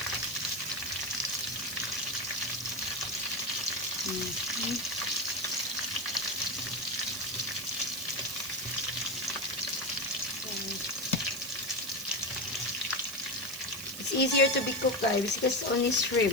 It's easier to be cooked, guys, because it's only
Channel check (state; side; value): noise; right; hiss, 10 dB below the sound